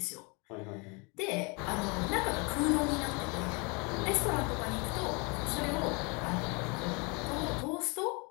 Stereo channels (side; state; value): right; quieter; 30.6 dB